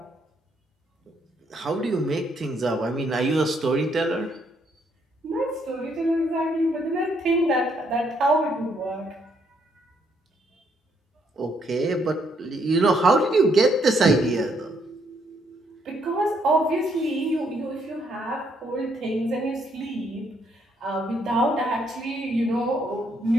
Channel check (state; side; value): normal; both; correlation 0.72